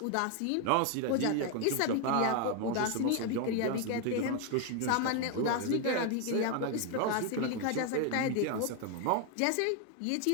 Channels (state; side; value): different; both; correlation 0.01